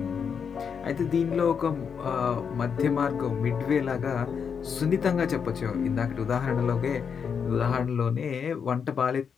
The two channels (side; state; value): right; quieter; 6.7 dB